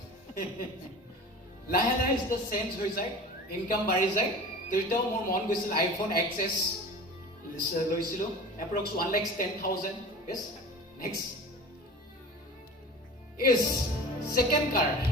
লাহে লাহে যেতিয়া চেঞ্জ হৈ যায় ইনকাম বাঢ়ি যায় তেতিয়াও মোৰ মন গৈছিল আইফোন XS লৈছিলো approx 1,10,000 yes next is second car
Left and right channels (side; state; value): both; normal; correlation 0.37